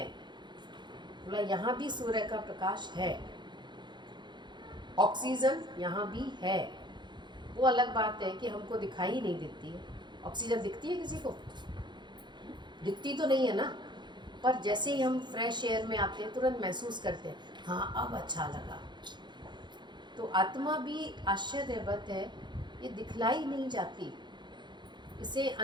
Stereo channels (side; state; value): left; late; 0.22 ms